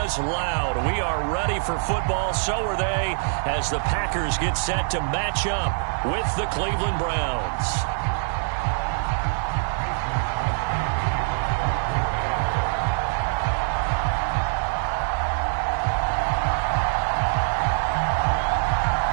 loud. We are ready for football, so are they, as the Packers get set to match up with the Cleveland Browns.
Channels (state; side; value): silent; left; digital silence